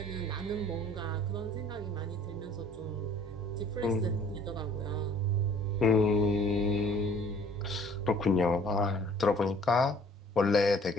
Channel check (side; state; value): both; normal; correlation 0.54